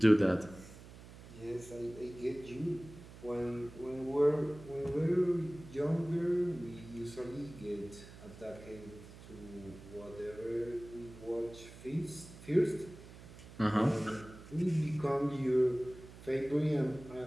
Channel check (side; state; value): right; noise; hum, 17 dB below the sound